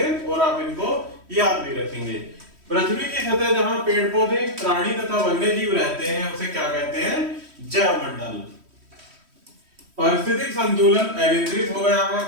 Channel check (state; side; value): late; left; 3.1 ms